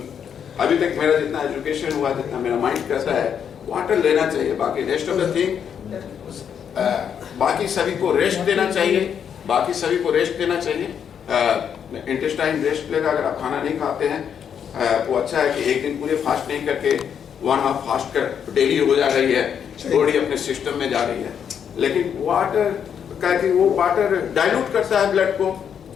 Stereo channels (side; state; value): right; quieter; 8.0 dB